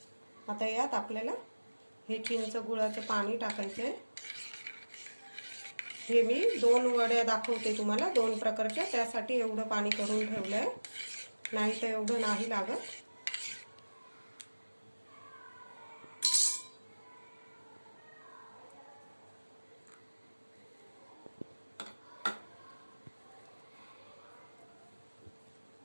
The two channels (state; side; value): inverted; both; correlation -1.00